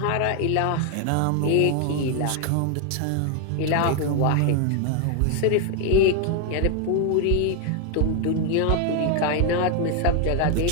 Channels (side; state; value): both; different; correlation 0.00